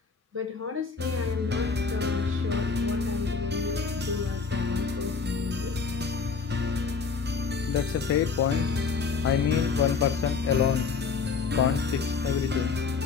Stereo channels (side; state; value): right; quieter; 5.2 dB